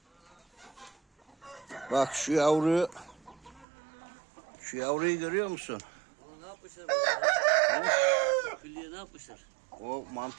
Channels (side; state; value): left; drops out; at 3.7 s